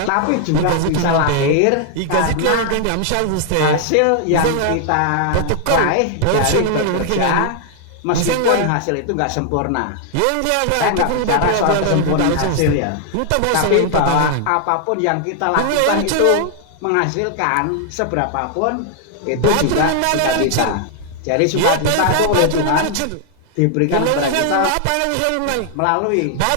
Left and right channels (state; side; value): different; both; correlation 0.00